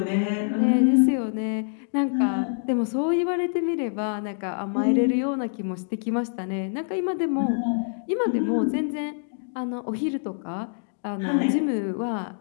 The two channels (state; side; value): silent; right; digital silence